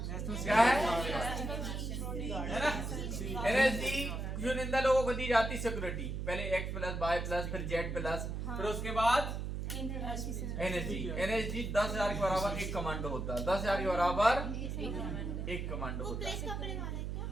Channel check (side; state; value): right; noise; hum, 3 dB below the sound